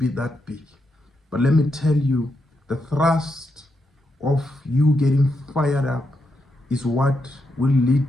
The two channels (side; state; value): both; normal; correlation 0.83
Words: that big. But let me tell you, the thrust of you getting fired up is what will lead